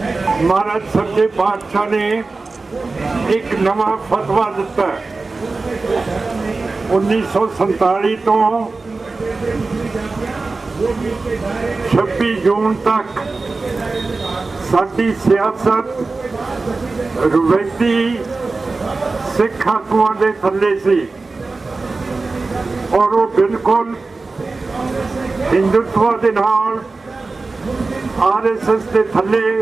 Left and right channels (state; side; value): quieter; left; 3.7 dB